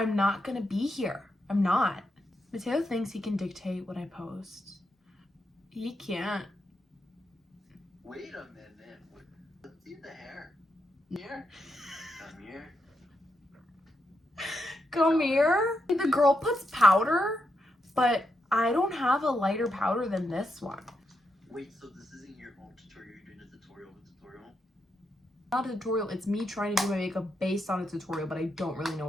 not gonna be here. I'm not. Mateo thinks he can dictate what I post. He can't. Wait a minute. Let's see the hair. Here. Come here. Come here. The girl puts powder, but I don't have a lighter powder than this one. Wait, so this isn't your own tutorial? You're doing a tutorial? Not a tutorial. It's me trying to do my makeup based on a tutorial, but I don't really know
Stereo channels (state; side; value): normal; both; correlation 0.82